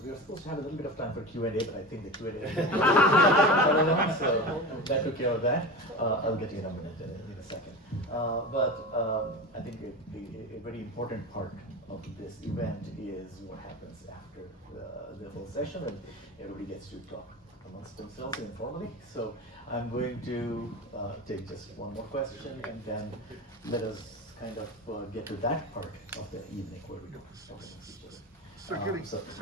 supposed to have a little bit of time for Q&A, but I think the Q&A is so that took care of that. I'll get you in a minute, in a second. But I think a very important part of this event is what happens after the whole session, and everybody gets to talk amongst themselves informally. So I'm going to take just one more question, and then let us kind of get to that part of the evening where we do speeches. So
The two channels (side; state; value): both; normal; correlation 0.27